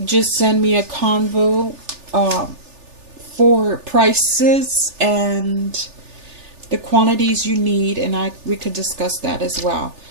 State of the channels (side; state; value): left; late; 3.4 ms